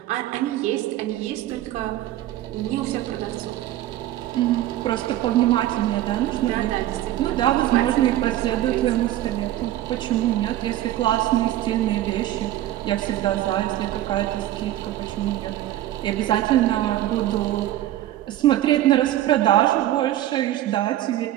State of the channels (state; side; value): quieter; left; 13.8 dB